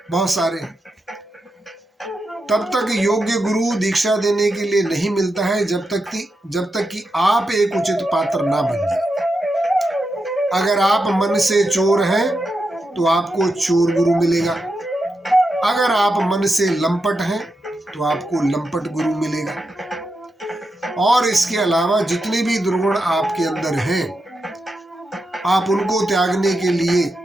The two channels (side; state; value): both; normal; correlation 0.87